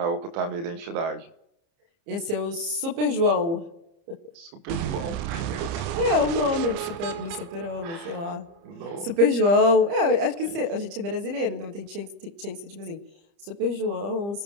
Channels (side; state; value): left; late; 30 ms